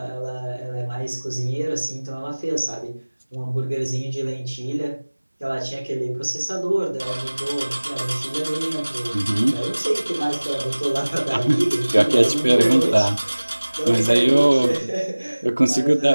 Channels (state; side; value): inverted; both; correlation -1.00